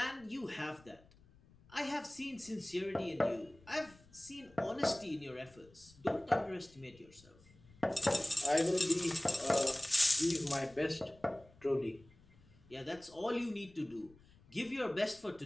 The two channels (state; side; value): noise; left; rumble, 26 dB below the sound